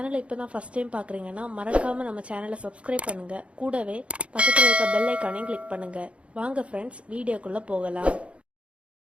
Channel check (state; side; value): late; left; 0.061 ms